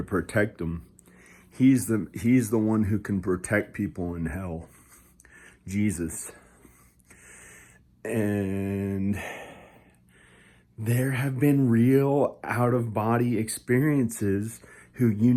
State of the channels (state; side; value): identical; both; correlation 1.00